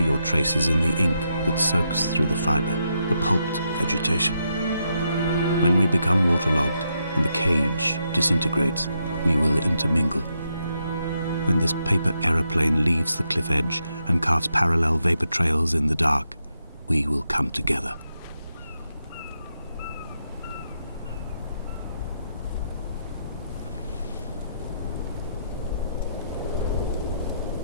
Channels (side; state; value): both; inverted; correlation -0.82